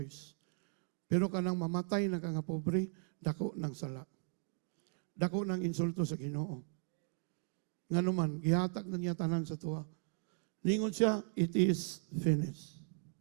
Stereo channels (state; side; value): silent; left; 53 dB below the other